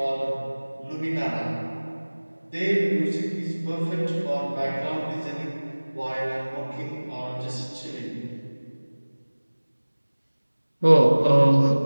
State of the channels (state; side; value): inverted; both; correlation -1.00